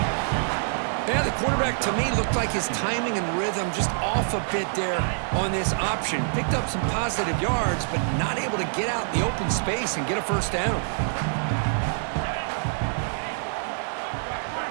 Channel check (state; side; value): silent; left; 61 dB below the other